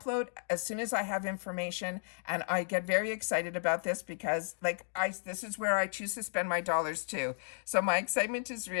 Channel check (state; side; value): silent; right; digital silence